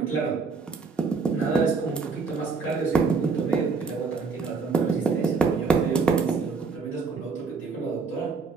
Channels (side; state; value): left; quieter; 4.7 dB